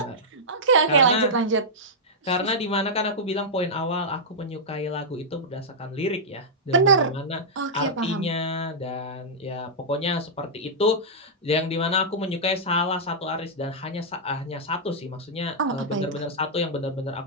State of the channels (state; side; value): normal; both; correlation -0.09